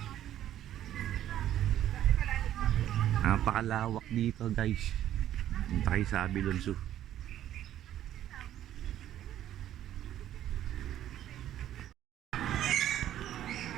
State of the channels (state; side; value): quieter; left; 11.9 dB